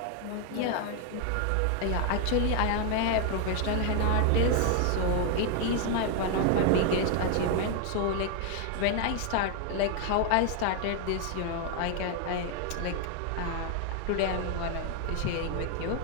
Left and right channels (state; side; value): different; both; correlation 0.00